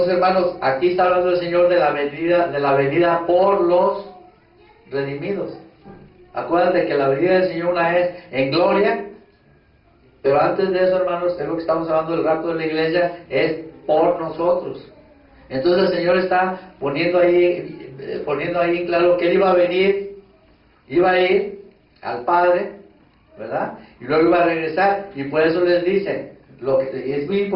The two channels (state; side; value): identical; both; correlation 1.00